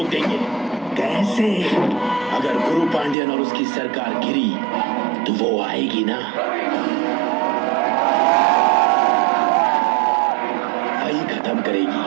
देंगे। कैसे? अगर गुरु पांड्यन और उसकी सरकार गिरी तो वो आएगी ना। वही खत्म करेगी।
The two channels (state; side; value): drops out; left; at 3.2 s